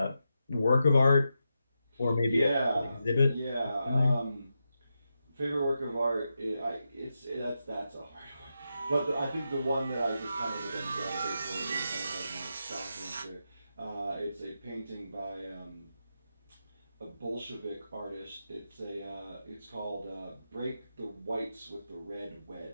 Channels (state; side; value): inverted; both; correlation -0.87